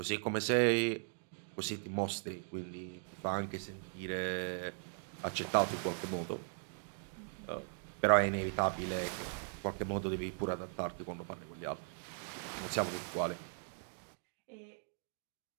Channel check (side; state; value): left; silent; digital silence